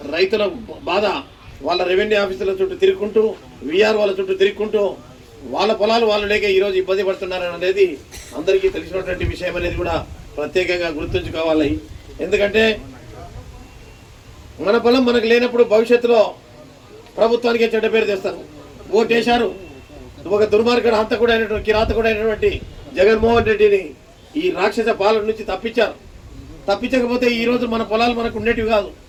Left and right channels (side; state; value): both; identical; correlation 1.00